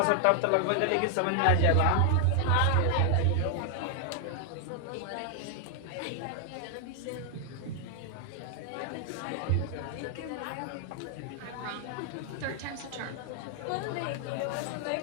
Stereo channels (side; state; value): both; different; correlation 0.00